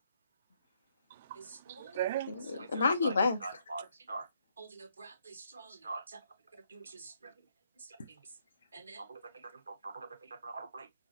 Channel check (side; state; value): both; inverted; correlation -0.72